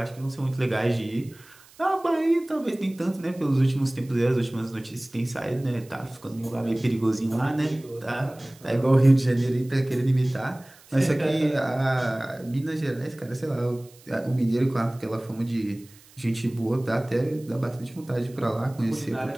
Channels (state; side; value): noise; right; hiss, 25 dB below the sound